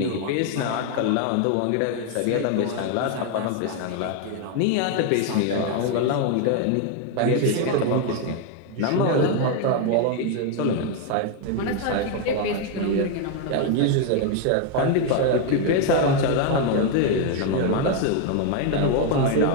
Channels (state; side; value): different; both; correlation 0.01